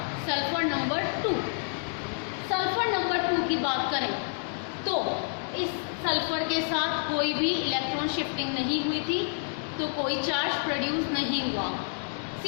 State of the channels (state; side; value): silent; right; digital silence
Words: sulphur number 2। Sulphur number 2 की बात करें तो इस सल्फर के साथ कोई भी इलेक्ट्रॉन शिफ्टिंग नहीं हुई थी, तो कोई चार्ज प्रोड्यूस नहीं हुआ।